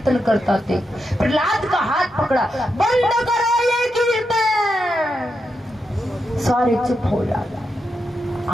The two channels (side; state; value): both; normal; correlation 0.85